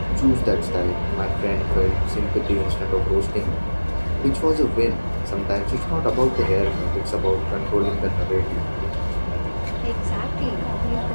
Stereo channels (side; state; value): both; inverted; correlation -1.00